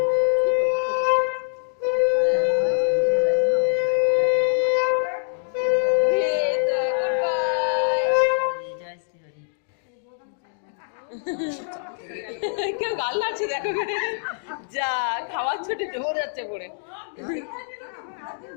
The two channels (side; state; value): right; silent; digital silence